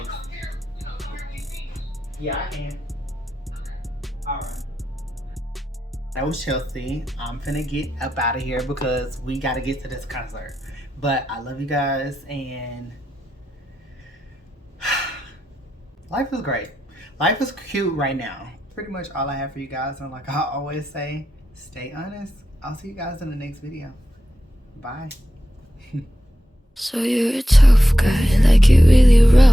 Yeah, I can. Alright. That was Chelsea. I'm finna get up out of here because we gotta get to this concert. But I love you guys, and life is great. Life is cute right now. Pretty much all I have for you guys, and like I always say, stay honest. I'll see you guys in the next video. Bye. So you're a tough guy, like it really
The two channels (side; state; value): both; normal; correlation 0.88